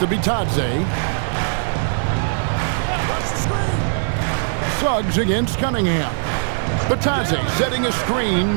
Bitadze. Suggs against Cunningham. Bitadze setting a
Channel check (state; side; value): silent; left; digital silence